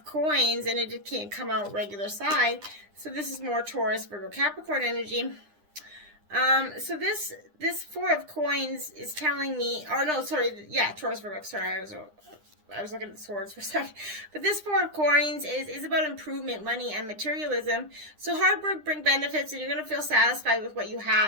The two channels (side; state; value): left; late; 9.9 ms